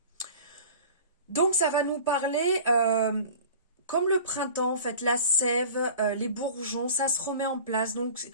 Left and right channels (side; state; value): both; inverted; correlation -0.42